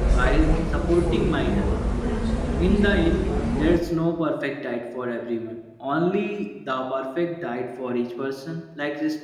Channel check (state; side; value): identical; both; correlation 1.00